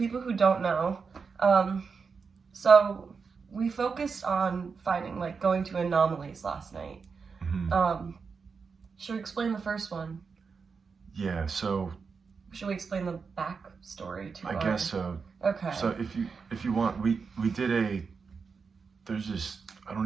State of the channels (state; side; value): quieter; left; 5.3 dB